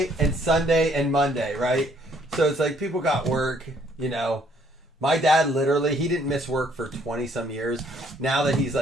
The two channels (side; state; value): both; normal; correlation 0.65